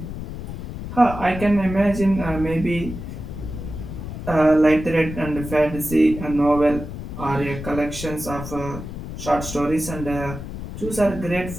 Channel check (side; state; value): left; noise; rumble, 9 dB below the sound